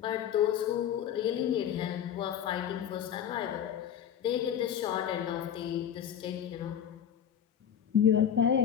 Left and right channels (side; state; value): right; quieter; 9.2 dB